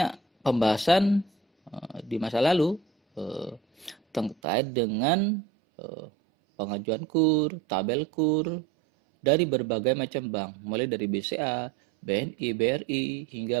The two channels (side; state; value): left; drops out; at 4.4 s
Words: pembahasan di masa lalu terkait dengan pengajuan KUR, tabel KUR, dari berbagai macam bank, mulai dari BCA, BNI, BRI,